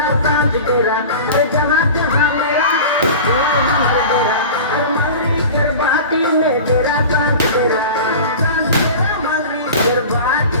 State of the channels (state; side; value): inverted; both; correlation -0.35